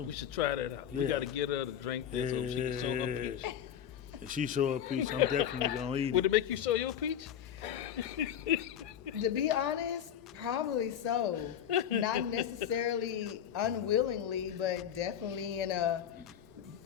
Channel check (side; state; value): right; quieter; 9.5 dB